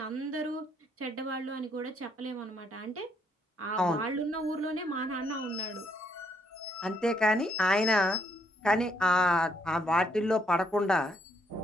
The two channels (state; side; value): normal; both; correlation 0.72